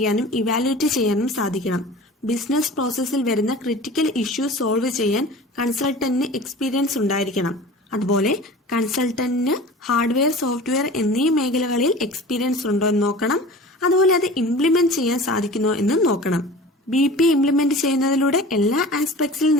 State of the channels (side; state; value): both; normal; correlation 0.39